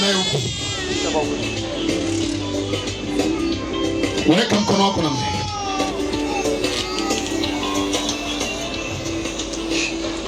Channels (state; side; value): identical; both; correlation 1.00